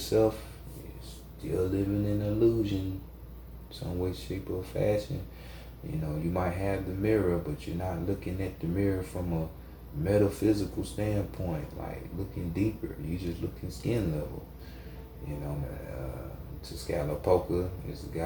You're still living in illusion, some way, shape, or fashion. You might have the mirror, but you're not looking at the mirror from a metaphysical standpoint, like looking deeper. You just looking skin level. Tezcatlipoca is the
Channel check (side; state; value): both; identical; correlation 1.00